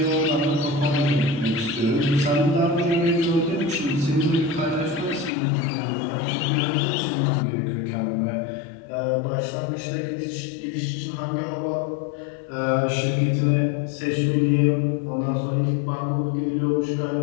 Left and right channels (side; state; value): right; drops out; at 5.3 s